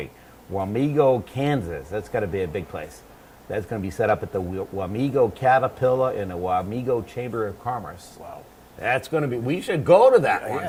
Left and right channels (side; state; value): both; identical; correlation 1.00